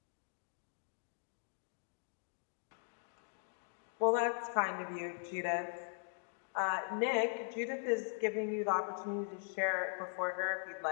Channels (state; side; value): silent; right; digital silence